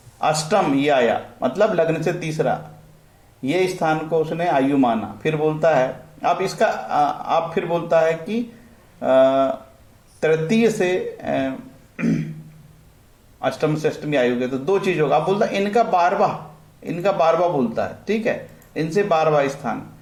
अष्टम ये आया, मतलब लग्न से तीसरा ये स्थान को उसने आयु माना। फिर बोलता है अब इसका आप फिर बोलता है कि तृतीय से अष्टम से अष्टमी आयु के तो 2 चीज होगा। आप बोलता है इनका 12वां बोलता है, ठीक है। इनसे 12वां स्थान,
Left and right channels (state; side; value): identical; both; correlation 1.00